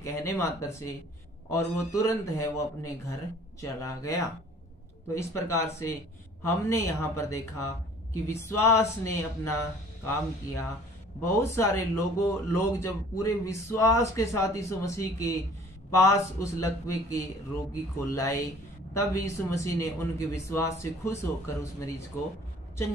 मात्र से, और वो तुरंत है वो अपने घर चला गया। तो इस प्रकार से हमने यहाँ पर देखा कि विश्वास ने अपना काम किया। बहुत सारे लोग जब पूरे विश्वास के साथ यीशु मसीह के पास उस लकवे के रोगी को लाए, तब यीशु मसीह ने उनके विश्वास से खुश होकर उस मरीज को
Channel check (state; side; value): normal; both; correlation 0.51